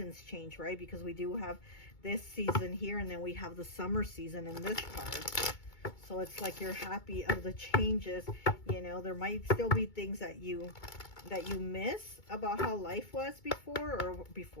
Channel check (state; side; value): late; right; 2.2 ms